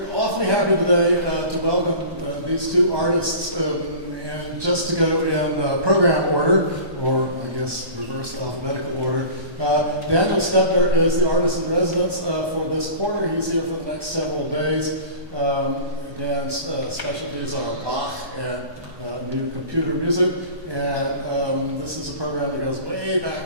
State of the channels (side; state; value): left; late; 1.2 ms